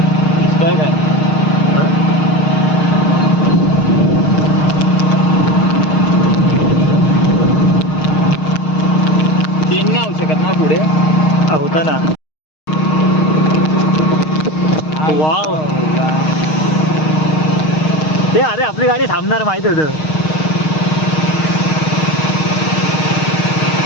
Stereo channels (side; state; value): right; late; 6.5 ms